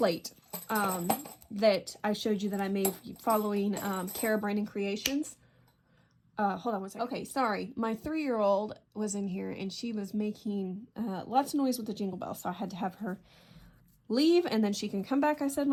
that I showed you that I made following Cara Brandon Creations. Hold on one second. Okay, sorry. My 3-year-old was in here and she was making lots of noise with the jingle bell. So I had to have her leave and then she can come back, I said,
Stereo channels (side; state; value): both; identical; correlation 1.00